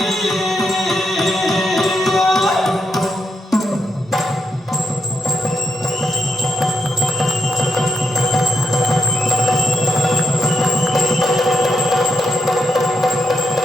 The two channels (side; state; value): both; normal; correlation 0.80